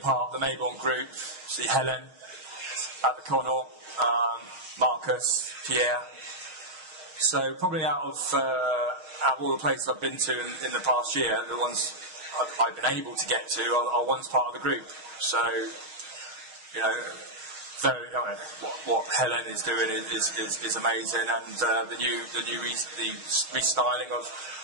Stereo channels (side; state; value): left; late; 6.3 ms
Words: part of the Mayborn group, see Helen at the Connaught, Marcus, Pierre. So probably out of all the places I've been to in the past year, the ones I've been able to get to are ones part of the group. So, what Helen is doing is amazing, and the new restyling